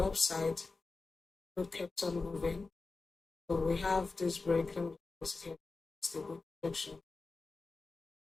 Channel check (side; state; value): right; quieter; 3.9 dB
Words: upside, gold kept on moving. So we have this break, let me just here, it's the good projection.